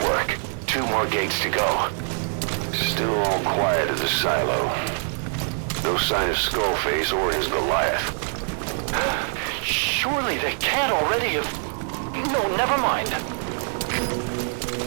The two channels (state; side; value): silent; left; 62 dB below the other